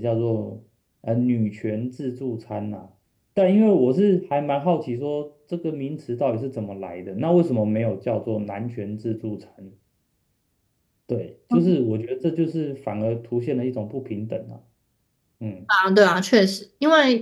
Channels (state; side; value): identical; both; correlation 1.00